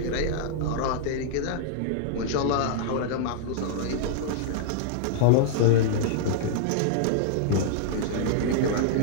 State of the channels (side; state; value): both; different; correlation -0.01